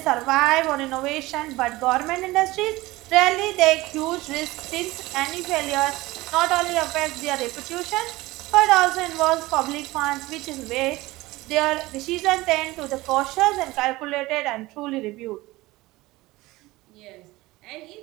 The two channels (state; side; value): quieter; left; 19.7 dB